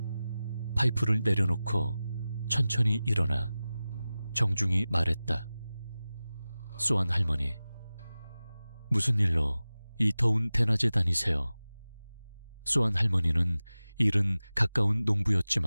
파이프를 내려놓고 천천히 일어나 정중히 말했다. 소안 할머니, 무슨 일로 이 더운 대낮에 다니세요? 소안 할머니는 일은 가까운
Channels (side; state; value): both; inverted; correlation -0.96